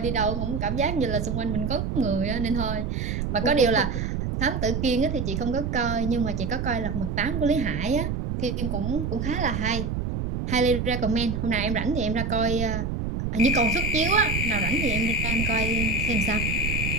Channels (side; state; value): right; noise; rumble, 2 dB below the sound